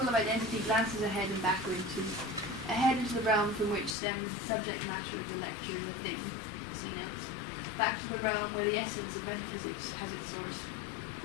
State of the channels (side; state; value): right; drops out; at 4.0 s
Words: of identity glances ahead and backward ahead into the realm from which stems the subject matter of the lecture in the thing, see notes, back to the realm where the essence of metaphysics has its source.